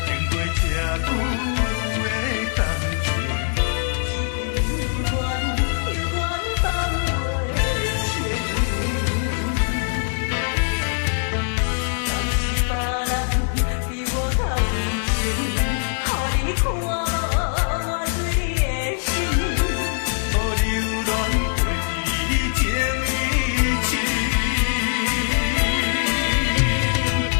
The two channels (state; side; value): silent; right; 64 dB below the other